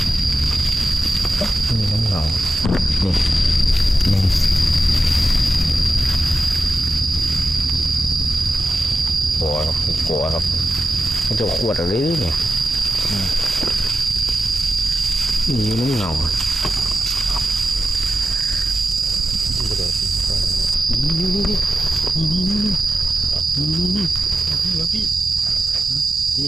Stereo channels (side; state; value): both; normal; correlation 0.91